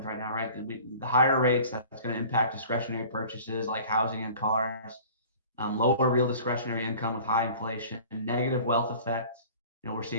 right now, right? The higher rates, that's going to impact discretionary purchases like housing and cars, lower real discretionary income with high inflation, and negative wealth effect. We're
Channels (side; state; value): both; inverted; correlation -0.45